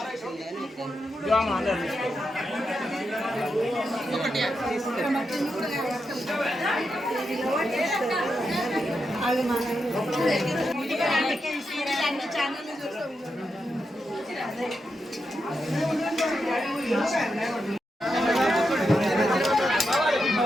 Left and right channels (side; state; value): both; normal; correlation 0.86